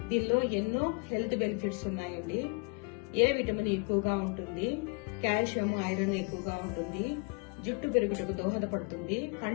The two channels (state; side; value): quieter; right; 34.1 dB